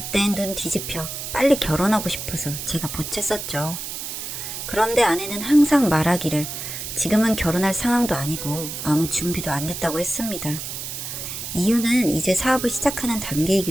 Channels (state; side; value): noise; right; hiss, 7 dB below the sound